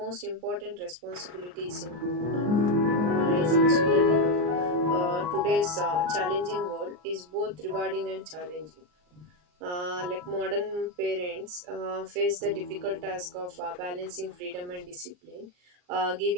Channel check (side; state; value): left; late; 39 ms